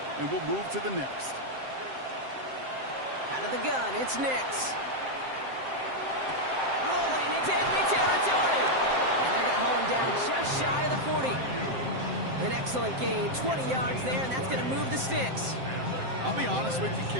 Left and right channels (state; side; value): late; left; 7.6 ms